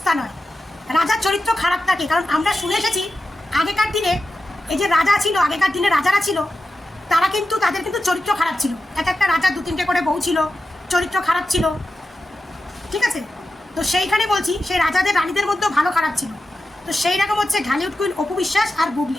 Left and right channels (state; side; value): normal; both; correlation 0.91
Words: নয়, রাজার চরিত্র খারাপ থাকে। কারণ আমরা শুনে এসেছি আগেকার দিনে এই যে রাজা ছিল, আগেকার দিনে রাজারা ছিল, তারা কিন্তু তাদের কিন্তু চরিত্র খারাপ ছিল। এক একটা রাজার 2-3টে করে বউ ছিল, চরিত্র খারাপ ছিল, ঠিক আছে? তো সেইখানে বলছি সেই রাজাদের রানীদের মধ্যেও ভালো খারাপ ছিল। তো সেই রকম হচ্ছে ঢালিউড কুইন অপবিশ্বাস আর